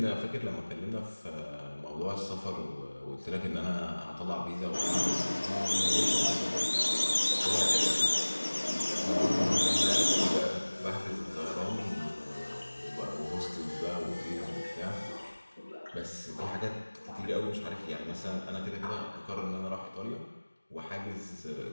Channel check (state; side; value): inverted; both; correlation -1.00